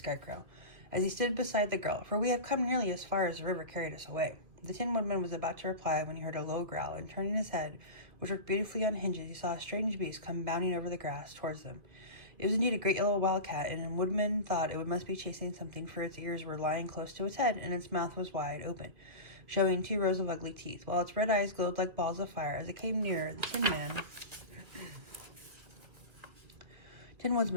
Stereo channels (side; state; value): left; late; 2.3 ms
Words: as he stood beside the girl, for we have come nearly as far as the river carried us away. The Tin Woodman was about to reply when he heard a low growl, and turning his head, which worked beautifully on hinges, he saw a strange beast come bounding over the grass towards them. It was indeed a great yellow wildcat, and the Woodman thought it must be chasing something, for its ears were lying close to its head, and its mouth was wide open, showing 2 rows of ugly teeth, while its red eyes glowed like balls of fire. As it came nearer, the Tin